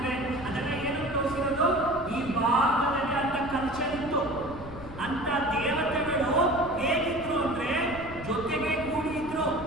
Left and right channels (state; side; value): noise; left; rumble, 13 dB below the sound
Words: ಅದೆಲ್ಲ ಏನು ತೋರಿಸಿರೋದು? ಈ ಭಾರತದಲ್ಲಿ ಅಂತ ಕಲ್ಚರ್ ಇತ್ತು. ಅಂತ ದೇವತೆಗಳು ಹೇಗಿದ್ರು ಅಂದ್ರೆ ಜೊತೆಗೆ ಕೂಡಿ ಇದ್ರು.